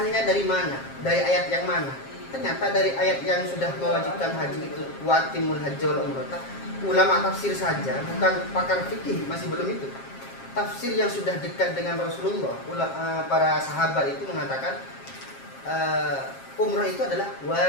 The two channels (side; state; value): right; late; 7.5 ms